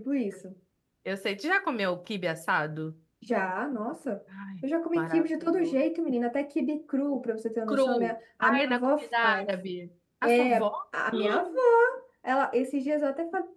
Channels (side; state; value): both; identical; correlation 1.00